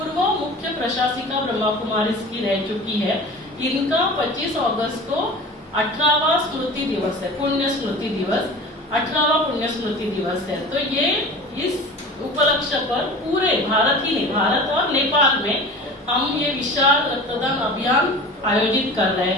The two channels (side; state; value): both; normal; correlation 0.37